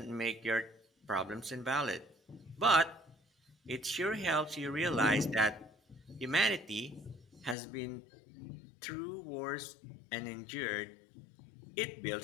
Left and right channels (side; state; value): right; drops out; at 7.6 s